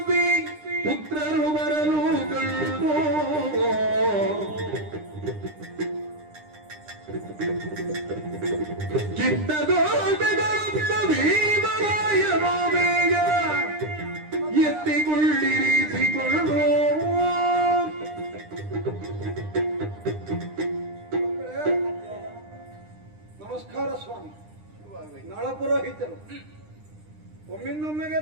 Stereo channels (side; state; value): left; late; 9.9 ms